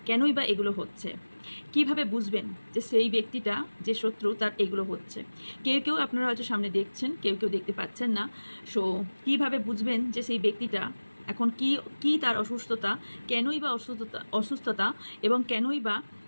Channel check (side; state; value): both; inverted; correlation -1.00